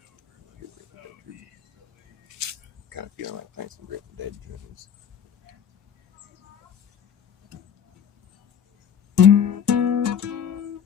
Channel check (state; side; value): quieter; right; 8.2 dB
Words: Kind of feeling like playing some Grateful Dead tunes.